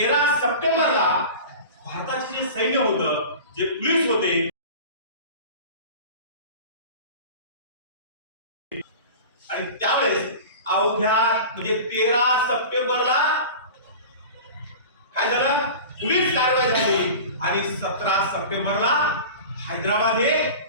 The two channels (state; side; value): inverted; both; correlation -0.35